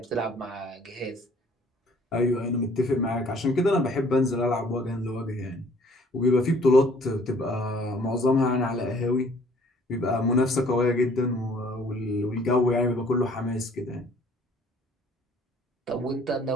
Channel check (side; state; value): both; normal; correlation 0.57